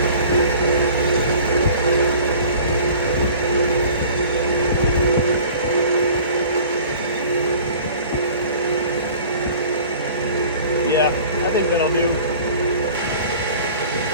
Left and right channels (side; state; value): both; inverted; correlation -0.46